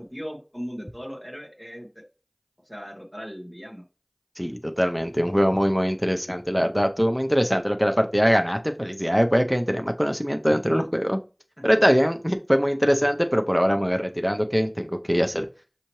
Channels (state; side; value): identical; both; correlation 1.00